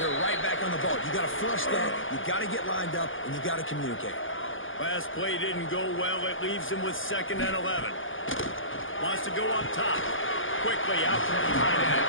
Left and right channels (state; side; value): late; right; 0.58 ms